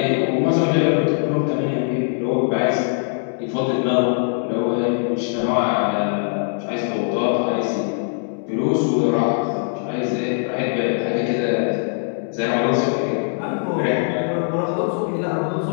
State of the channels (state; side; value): silent; right; 65 dB below the other